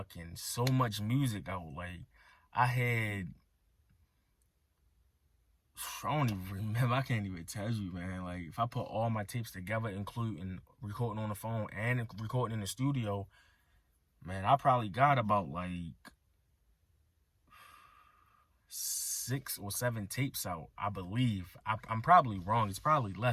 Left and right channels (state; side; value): identical; both; correlation 1.00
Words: so much music out. Like, I don't even remember. I can't even tell you, man. Like, if I put all my tapes together, including recording on the phone and recording in the studio, man, I probably got about like 6 or 7 tapes out, I believe. I'm probably wrong. It's probably